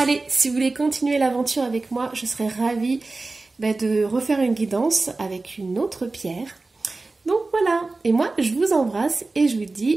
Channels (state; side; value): quieter; left; 3.4 dB